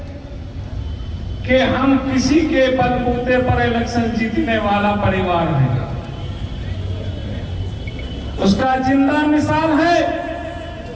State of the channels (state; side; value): identical; both; correlation 1.00